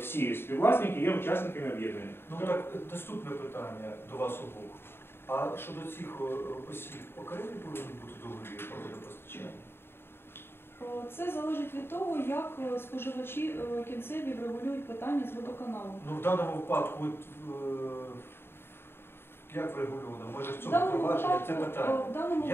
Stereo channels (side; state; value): right; late; 0.11 ms